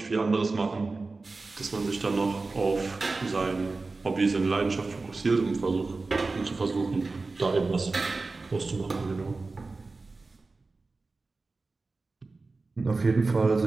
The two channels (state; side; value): quieter; left; 3.7 dB